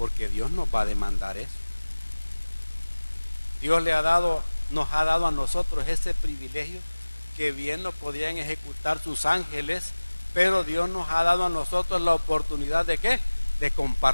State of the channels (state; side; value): inverted; both; correlation -1.00